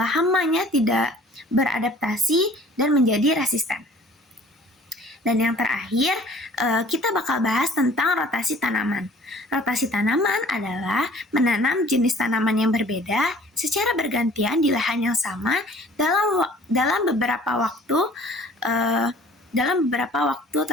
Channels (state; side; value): normal; both; correlation 0.51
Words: hamanya tidak beradaptasi dan menjadi resisten. Dan yang terakhir, kita bakal bahas tentang rotasi tanaman. Rotasi tanaman adalah menanam jenis tanaman yang berbeda secara bergantian di lahan yang sama dalam beberapa waktu